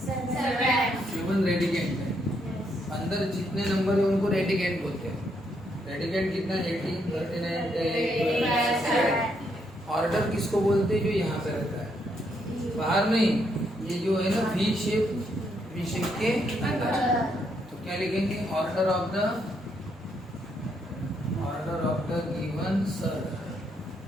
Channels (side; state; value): both; normal; correlation 0.75